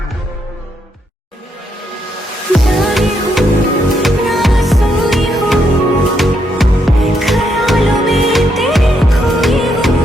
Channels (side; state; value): both; normal; correlation 0.77